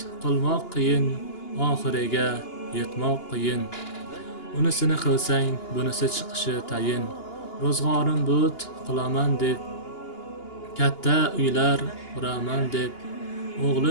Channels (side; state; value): right; late; 2.8 ms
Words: qilmoq qiyin, oxiriga yetmoq qiyin. Unisini qilsang, bunisi chiqishi tayin. Ro'zg'orim but qilaman deb, katta uylar quraman deb,